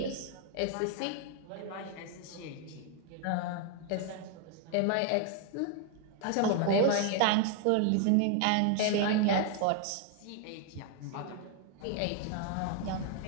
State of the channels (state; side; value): different; both; correlation 0.00